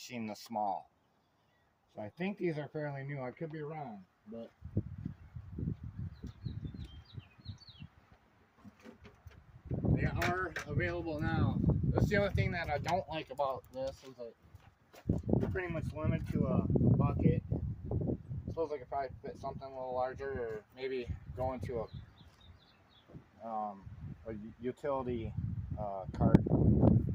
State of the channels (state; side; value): identical; both; correlation 1.00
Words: this small. So I think these are fairly new. I could be wrong, but they are available now. That's the other thing that I don't like about this is that it's pretty much limited to a bucket. I suppose I could probably fit something a little larger, or maybe go into a utility cart.